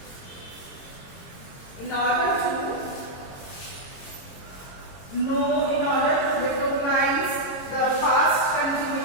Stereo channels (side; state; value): right; late; 22 ms